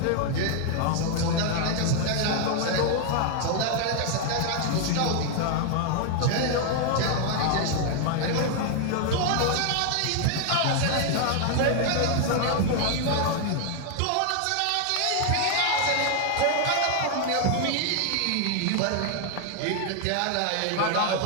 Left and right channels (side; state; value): both; different; correlation 0.00